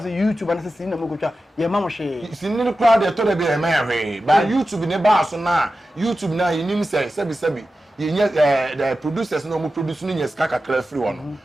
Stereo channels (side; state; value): both; normal; correlation 0.93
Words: say YouTube and say sin na muko twa. Ye ma mo hwe. Sin ni crowd dey to dey be e ma hwe. But YouTube ne ba so na, YouTube na yinim say sebi. The producers no mo produce no nyes kaka kra free one